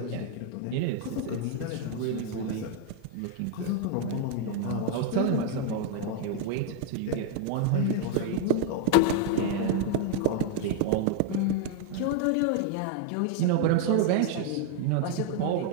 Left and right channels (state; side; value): different; both; correlation 0.00